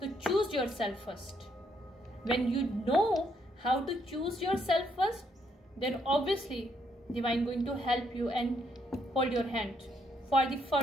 तो choose your self first. When you know how to choose your self first, then obviously divine going to help you and hold your hand for the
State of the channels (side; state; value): both; normal; correlation 0.73